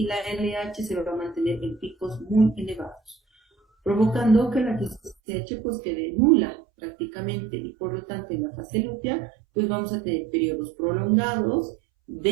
la LH se va a mantener en picos muy elevados, provocando que la TSH pues quede nula prácticamente y por lo tanto en la fase lútea pues vamos a tener periodos prolongados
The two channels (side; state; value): left; drops out; at 5.2 s